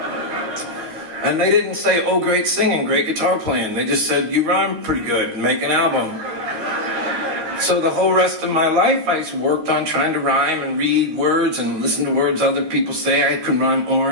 And they didn't say, oh, great singing, great guitar playing. They just said, you rhyme pretty good, make an album. So the whole rest of my life, I worked on trying to rhyme and read words and listen to words other people say. I could rhyme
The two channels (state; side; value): late; left; 12 ms